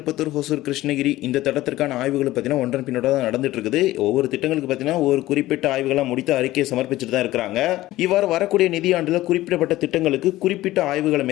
ஹொசூர், கிருஷ்ணகிரி இந்த திட்டத்திற்கான ஆய்வுகள் பார்த்தீங்கன்னா ஒன்றன் பின்னோட தான் நடந்துட்டு இருக்குது. ஒவ்வொரு திட்டங்களுக்கு பார்த்தீங்கன்னா ஒரு குறிப்பிட்ட ஆய்வுகளை முடித்து அறிக்கையை சமர்ப்பிச்சுட்டு தான் இருக்கிறாங்க. இவ்வாறு வரக்கூடிய நிதியாண்டில் குறிப்பிடப்பட்ட திட்டங்களுக்கு குறிப்பிட்ட ஆய்வுகளை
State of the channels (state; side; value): quieter; right; 16.4 dB